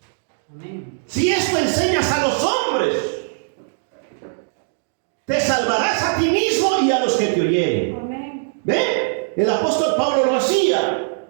Amén. si esto enseñas a los hombres, te salvarás a ti mismo y a los que te oyeren. Amén. ¿Ven? El apóstol Pablo lo hacía,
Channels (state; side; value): silent; left; digital silence